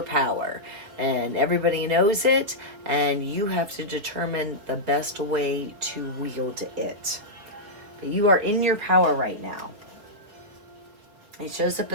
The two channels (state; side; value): late; left; 5.0 ms